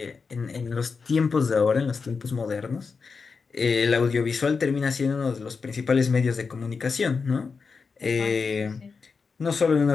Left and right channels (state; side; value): quieter; right; 5.0 dB